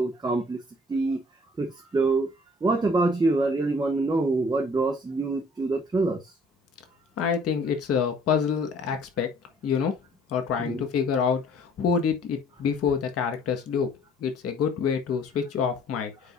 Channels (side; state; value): both; normal; correlation 0.55